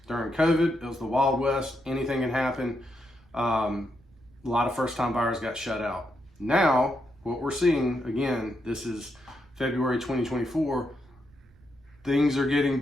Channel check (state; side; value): noise; right; rumble, 29 dB below the sound